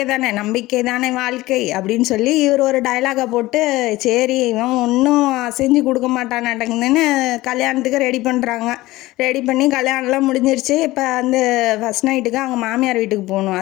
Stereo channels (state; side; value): quieter; right; 18.4 dB